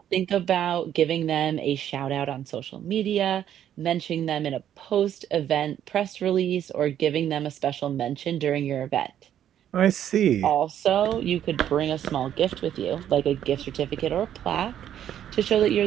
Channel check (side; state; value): left; quieter; 10.5 dB